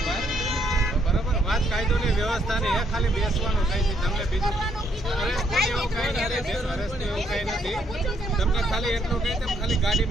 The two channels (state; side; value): normal; both; correlation 0.71